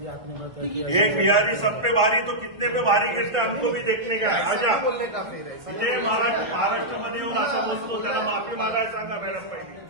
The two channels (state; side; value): late; left; 1.5 ms